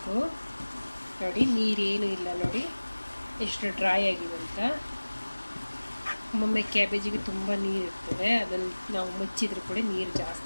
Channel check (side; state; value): both; inverted; correlation -1.00